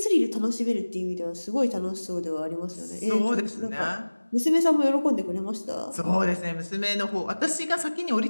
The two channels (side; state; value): both; inverted; correlation -1.00